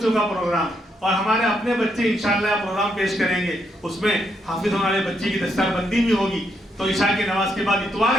کا پروگرام اور ہمارے اپنے بچے انشاءاللہ پروگرام پیش کریں گے. اس میں حافظ ہونے والے بچے کی دستار بندی بھی ہوگی. تو عشاء کی نماز کے بعد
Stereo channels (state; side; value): normal; both; correlation 0.77